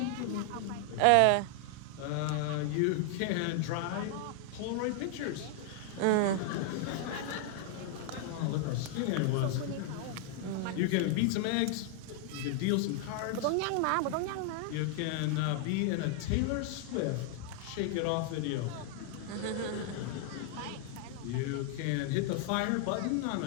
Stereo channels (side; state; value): both; different; correlation 0.00